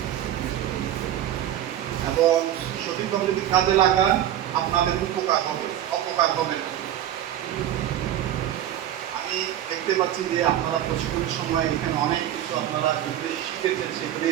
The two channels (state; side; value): quieter; left; 11.6 dB